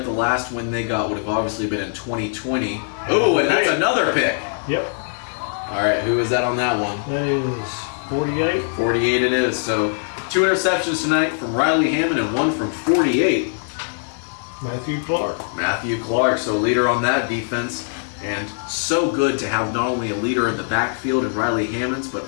the last win they got would have obviously been in 2020. Oh, and that's another pick. Yep. All right, who is that on that one? That is 48. 48 it is. So 2 interceptions tonight from Riley Hammond and 1 from 48. Matthew Clark. Matthew Clark, so leader on that defense. And so good to have not only a leader in the backfield in Riley Hammonds,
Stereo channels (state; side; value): silent; right; digital silence